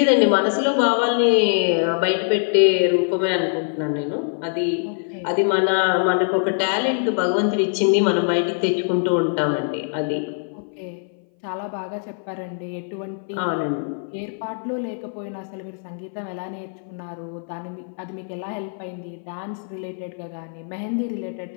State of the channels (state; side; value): silent; right; 59 dB below the other